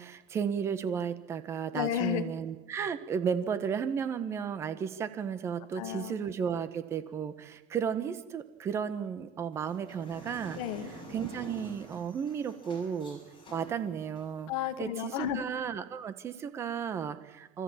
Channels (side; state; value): left; quieter; 3.9 dB